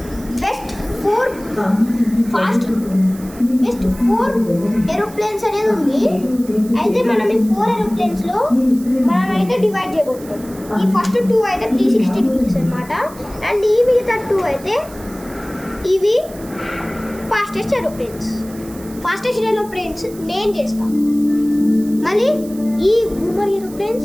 4 ఏరోప్లేన్స్ అనేది ఉంది. అయితే మనం ఈ 4 ఏరోప్లేన్స్లో మనం అయితే డివైడ్ చేయబోతున్నాం. ఈ ఫస్ట్ 2 అయితే 360 డిగ్రీస్ అనమాట. అండ్ ఈ మిగతా 2 అయితే ఇవి ఫాస్టెస్ట్ ఏరోప్లేన్స్ నేను చేస్తాను. మళ్ళీ ఈ బూమర్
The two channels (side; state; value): right; noise; hiss, 20 dB below the sound